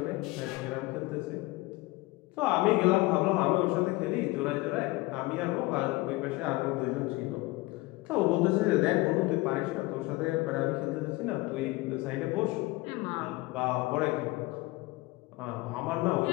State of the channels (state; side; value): quieter; right; 21.0 dB